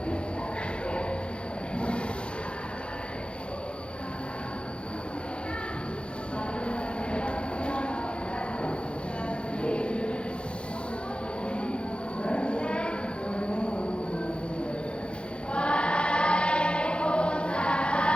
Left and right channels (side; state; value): right; late; 0.056 ms